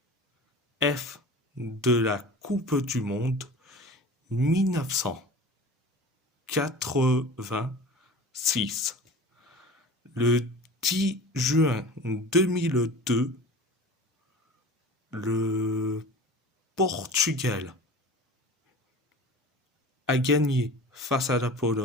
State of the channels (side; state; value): both; normal; correlation 0.38